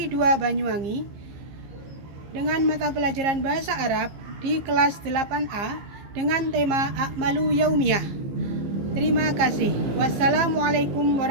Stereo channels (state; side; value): late; left; 15 ms